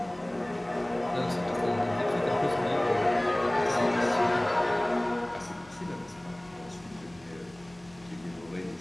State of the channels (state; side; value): noise; left; hum, 26 dB below the sound